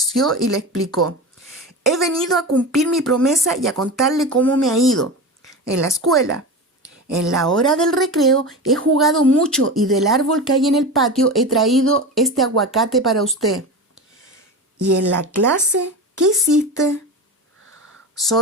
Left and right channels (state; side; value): normal; both; correlation 0.26